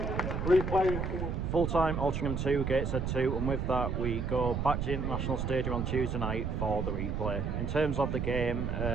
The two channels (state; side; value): noise; right; rumble, 2 dB below the sound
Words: replay. Full-time Altrincham 2, Gateshead 2, and with that we go back to the International Stadium on Tuesday night for the replay. In terms of the game,